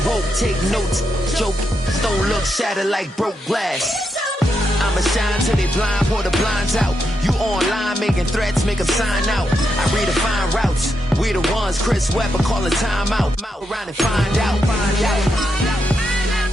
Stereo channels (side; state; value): both; normal; correlation 0.83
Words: woke, take notes, joke, don't look shattered like broke glass. I'ma shine till they blind, pour the blinds out. You online making threats, make 'em sign out. I redefine routes, we the ones Chris Webber calling time out. Around and find out. Around and